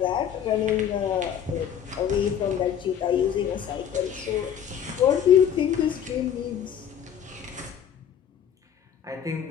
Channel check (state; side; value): quieter; right; 9.0 dB